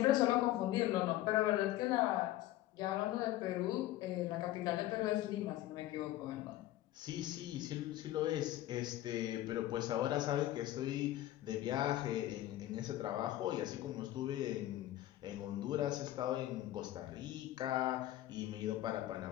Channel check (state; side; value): quieter; right; 14.7 dB